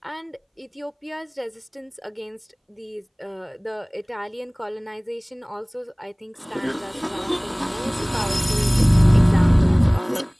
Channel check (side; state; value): both; identical; correlation 1.00